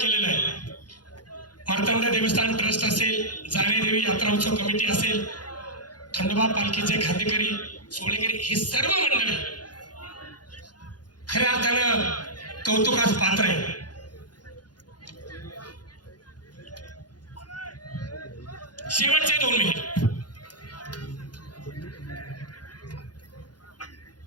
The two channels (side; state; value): right; late; 0.69 ms